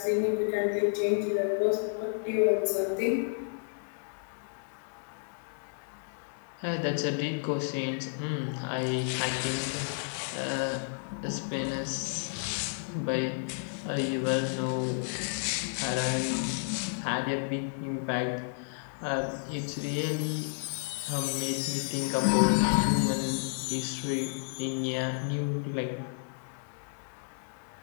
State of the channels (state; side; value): silent; right; digital silence